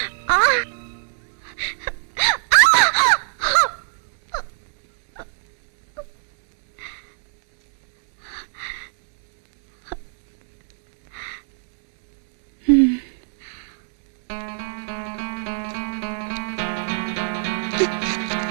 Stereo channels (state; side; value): silent; left; digital silence